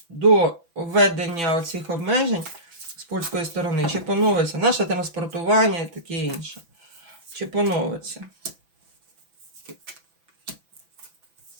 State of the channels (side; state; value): left; late; 6.0 ms